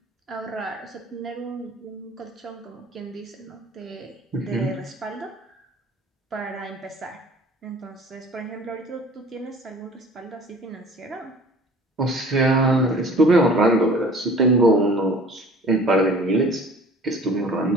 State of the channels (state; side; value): normal; both; correlation 0.47